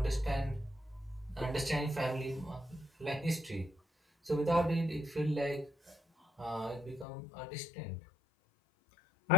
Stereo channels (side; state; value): right; drops out; at 7.1 s